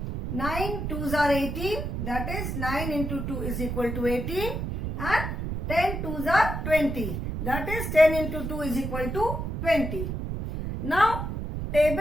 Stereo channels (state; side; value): noise; right; rumble, 4 dB below the sound